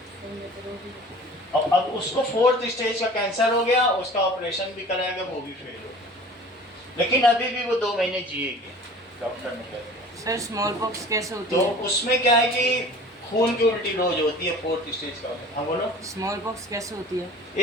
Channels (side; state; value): both; normal; correlation 0.44